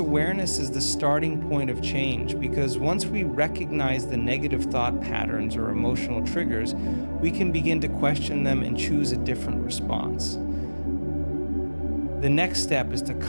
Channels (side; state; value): both; inverted; correlation -1.00